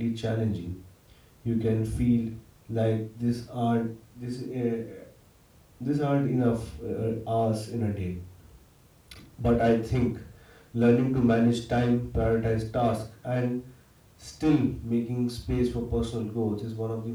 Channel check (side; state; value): both; identical; correlation 1.00